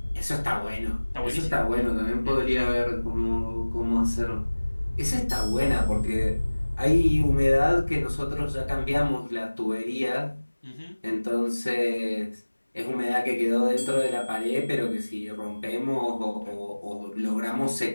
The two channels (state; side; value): inverted; both; correlation -1.00